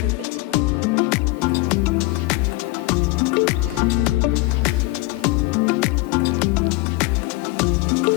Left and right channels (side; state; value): right; quieter; 20.9 dB